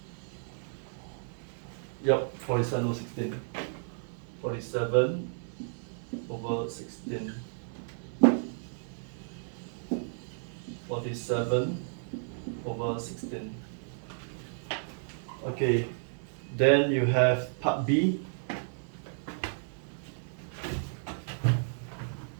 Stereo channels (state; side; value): silent; left; digital silence